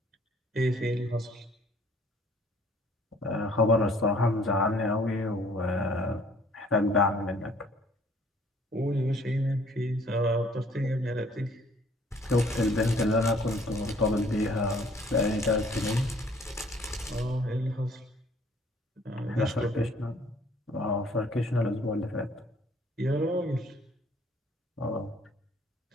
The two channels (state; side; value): normal; both; correlation 0.59